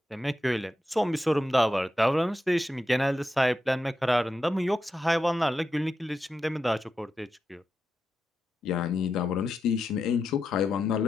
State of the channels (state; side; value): normal; both; correlation 0.88